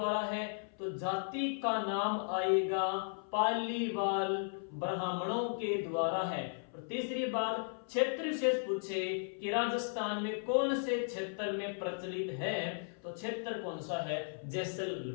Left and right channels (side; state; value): right; silent; 54 dB below the other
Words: है, तो जाति का नाम आएगा पालीवाल ब्राह्मणों के द्वारा है। और तीसरी बात, क्षेत्र विशेष पूछे कि राजस्थान में कौन से क्षेत्र में प्रचलित है, तो क्षेत्र कौन सा है,